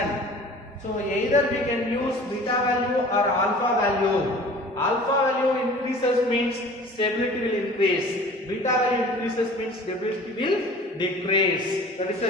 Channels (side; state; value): both; normal; correlation 0.45